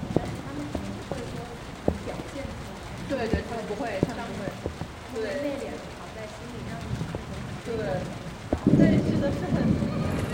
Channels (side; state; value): both; identical; correlation 1.00